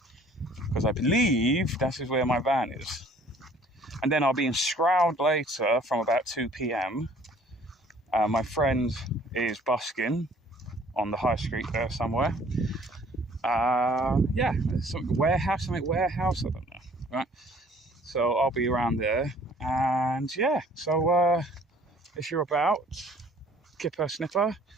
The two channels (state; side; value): normal; both; correlation 0.55